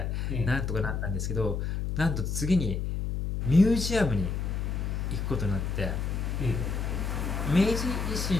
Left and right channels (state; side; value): noise; left; hum, 1 dB below the sound